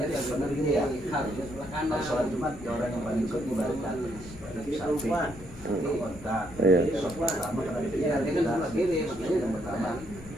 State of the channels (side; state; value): left; noise; rumble, 16 dB below the sound